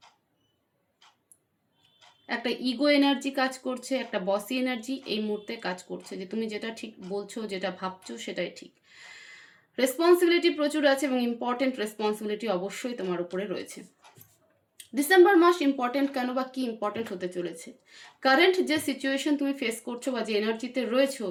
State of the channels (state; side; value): identical; both; correlation 1.00